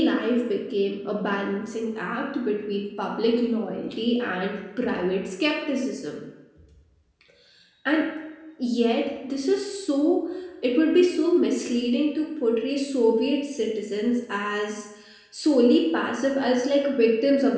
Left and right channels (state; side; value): identical; both; correlation 1.00